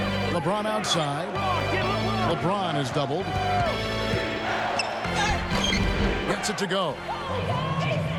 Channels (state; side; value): identical; both; correlation 1.00